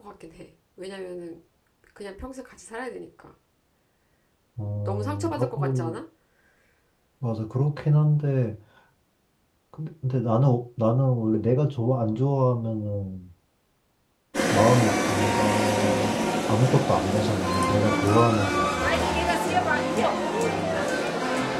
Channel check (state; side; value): identical; both; correlation 1.00